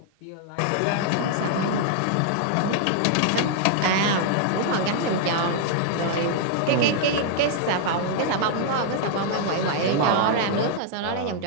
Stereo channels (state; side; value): different; both; correlation -0.01